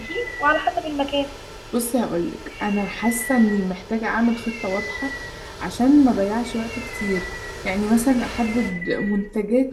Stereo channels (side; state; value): both; identical; correlation 1.00